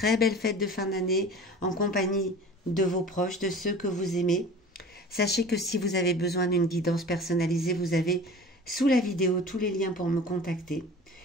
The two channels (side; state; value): both; normal; correlation 0.40